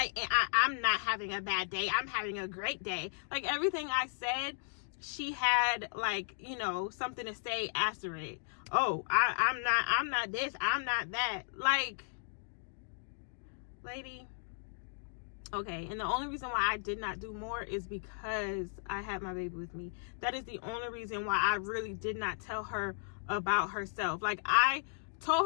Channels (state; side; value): silent; right; digital silence